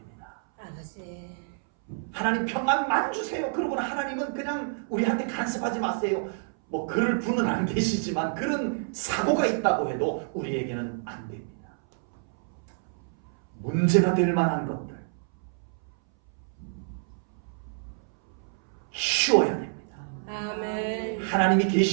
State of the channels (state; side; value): silent; left; 59 dB below the other